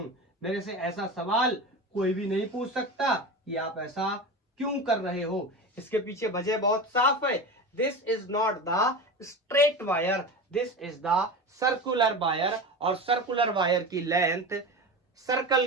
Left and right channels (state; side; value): normal; both; correlation 0.27